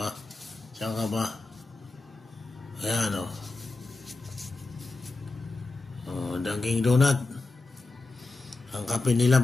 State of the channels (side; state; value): right; quieter; 3.4 dB